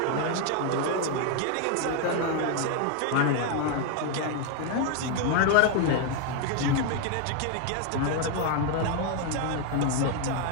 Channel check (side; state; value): both; different; correlation 0.00